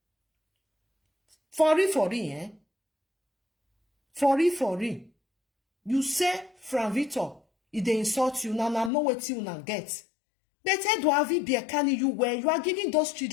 For real, For real. You say from Victor, if they insult you, now know what you now get. Better do have be a can you where you are giving those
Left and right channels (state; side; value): drops out; right; at 8.9 s